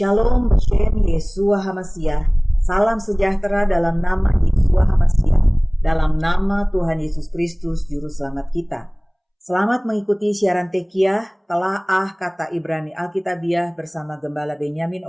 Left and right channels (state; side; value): identical; both; correlation 1.00